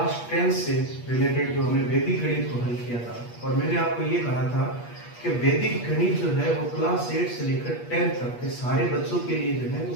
10 से रिलेटेड जो हमने वैदिक गणित को हल किया था और मैंने आपको ये कहा था कि वैदिक गणित जो है वो क्लास 8 से लेकर 10 तक के सारे बच्चों के लिए जो है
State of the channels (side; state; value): right; late; 8.4 ms